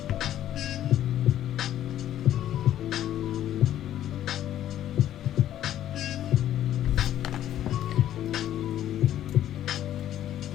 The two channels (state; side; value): quieter; right; 11.8 dB